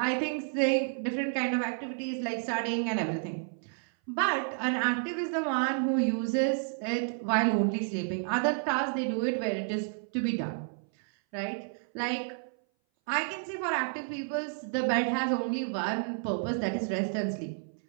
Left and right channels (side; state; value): left; silent; 57 dB below the other